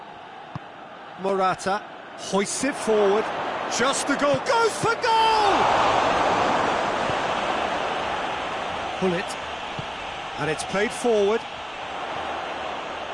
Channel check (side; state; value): both; identical; correlation 1.00